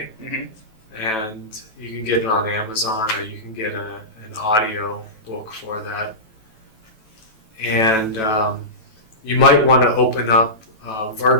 Mm-hmm. and you can get it on Amazon, or you can get an audio book for that. And you might want to open up a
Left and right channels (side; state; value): right; late; 9.1 ms